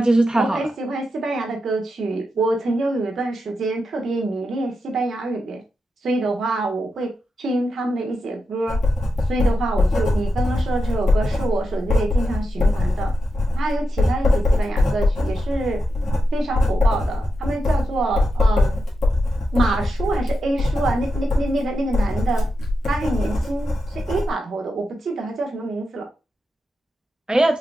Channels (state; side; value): normal; both; correlation 0.87